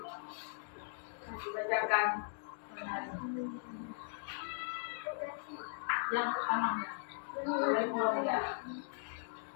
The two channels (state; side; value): silent; right; digital silence